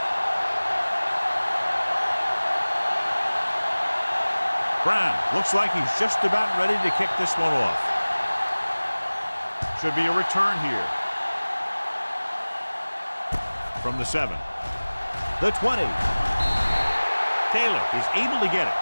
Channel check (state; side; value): inverted; both; correlation -1.00